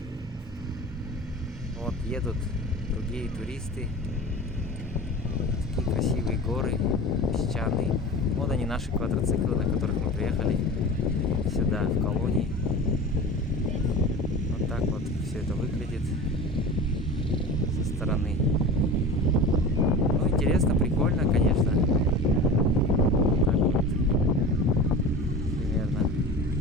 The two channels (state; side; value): normal; both; correlation 0.34